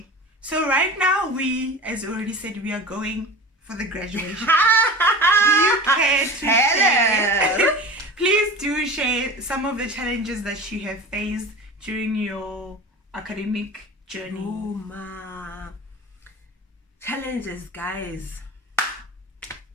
So right now we, as already said, we are going for the graduation. Do you care to share? Please do share some of the challenges that you have faced during your academic journey. Oh ma. Challenges, guys.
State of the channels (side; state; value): both; normal; correlation 0.34